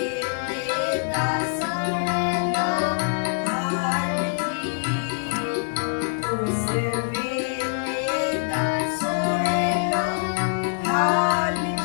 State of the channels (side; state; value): right; silent; digital silence